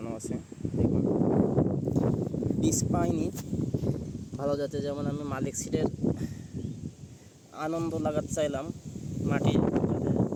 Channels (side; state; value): both; identical; correlation 1.00